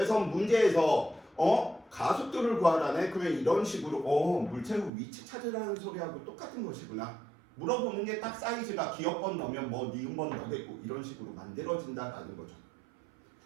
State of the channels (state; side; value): drops out; left; at 4.9 s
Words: 문제에서 가속도를 구하라네. 그러면 이런 식으로 물체의 위치 찾으라는 소리하고 똑같은 것이구나. 물어보는 게 딱 사이즈가 기억번 넣으면 니은번 넣겠고 이런 식으로 만들어진다라는 거죠.